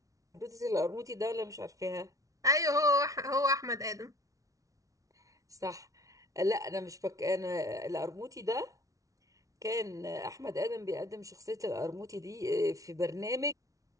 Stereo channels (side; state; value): left; late; 0.17 ms